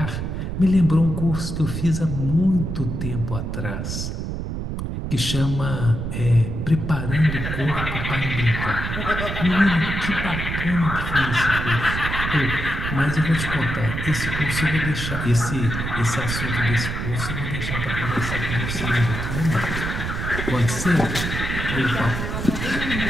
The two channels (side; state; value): right; noise; rumble, 4 dB below the sound